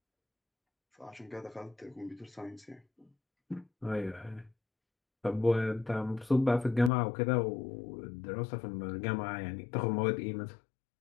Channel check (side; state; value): right; drops out; at 6.9 s